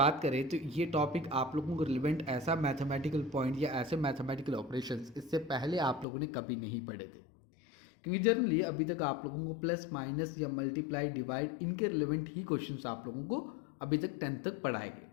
करें तो ये टॉपिक आप लोगों को रिलेवेंट ऐसा मैथमेटिकल पॉइंट या ऐसे मैथमेटिकल ऑपरेशंस इससे पहले आप लोगों ने कभी नहीं पढ़े थे, क्योंकि जनरली अभी तक आप लोगों को प्लस माइनस या मल्टीप्लाई डिवाइड इनके रिलेवेंट ही क्वेश्चंस आप लोगों को अभी तक 10th तक पढ़ाए गए।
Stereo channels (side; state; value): right; drops out; at 6.1 s